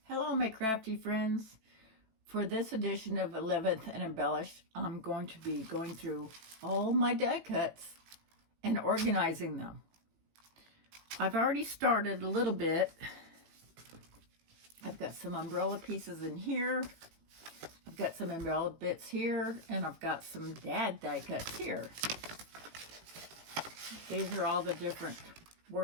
Hello, my crafty friends. For this edition of 11th and Embellish, I'm going to be going through all my die cuts and organizing them. I've already started a little bit. I've got some umbrella pieces in here. I've got some umbrella bits here, and I've got some dad die cuts here. These are all the different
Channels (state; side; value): late; left; 18 ms